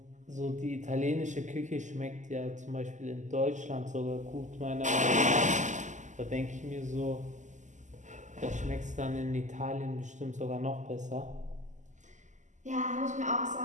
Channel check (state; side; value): late; left; 0.35 ms